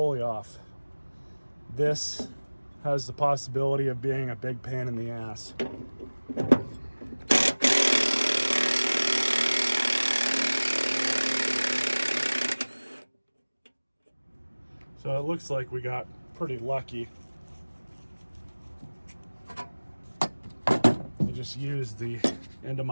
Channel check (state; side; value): inverted; both; correlation -1.00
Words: off. This has the possibility of being a big pain in the ass. So it looks like we got pretty lucky. I just used the end of